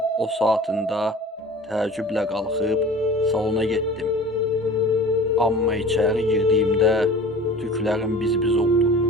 o saatında təəccüblə qalxıb salona getdim. Amma içəri girdiyimdə tüklərim biz-biz oldu.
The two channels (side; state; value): both; normal; correlation 0.42